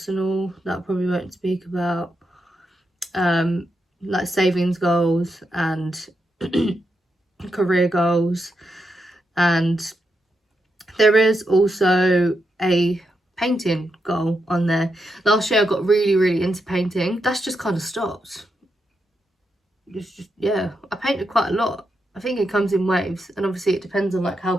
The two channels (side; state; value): both; normal; correlation 0.84